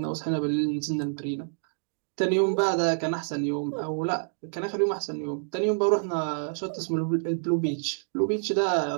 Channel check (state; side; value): silent; left; digital silence